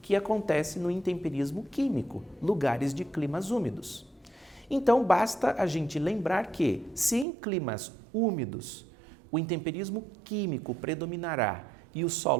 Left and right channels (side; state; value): left; drops out; at 7.2 s